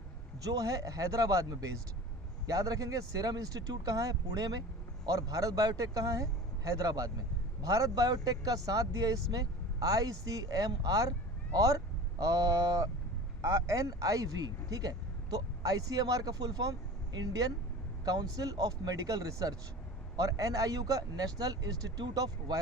जो है हैदराबाद में बेस्ड। याद रखेंगे, सीरम इंस्टीट्यूट कहाँ है? पुणे में, और भारत बायोटेक कहाँ है? हैदराबाद में। भारत बायोटेक का साथ दिया इसमें ICMR और NIV, ठीक है। तो ICMR का full form Indian council of medical research, और NIU का नेशनल इंस्टीट्यूट ऑफ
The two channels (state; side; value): normal; both; correlation 0.37